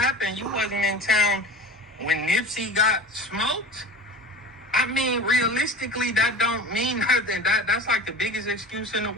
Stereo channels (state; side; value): normal; both; correlation 0.36